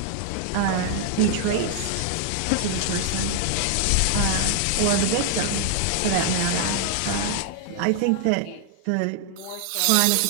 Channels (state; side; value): different; both; correlation 0.00